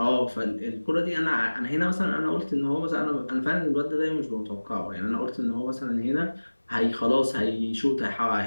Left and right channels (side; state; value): both; inverted; correlation -1.00